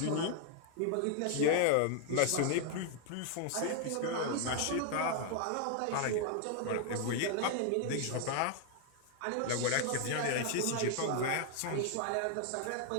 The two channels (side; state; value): both; different; correlation 0.00